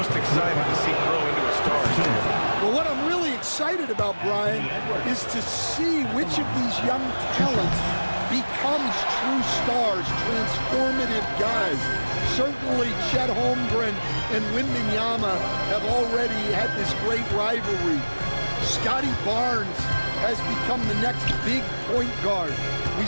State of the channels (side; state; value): both; inverted; correlation -1.00